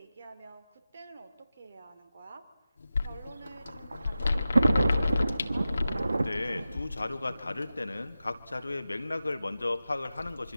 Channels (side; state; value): both; inverted; correlation -0.93